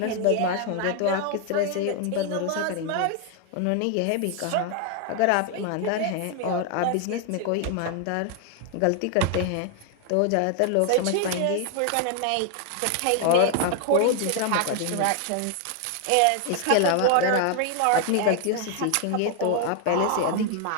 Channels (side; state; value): both; different; correlation 0.00